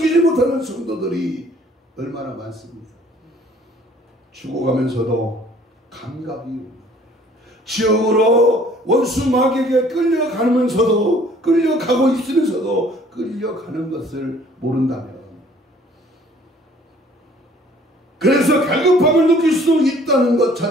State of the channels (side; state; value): both; normal; correlation 0.57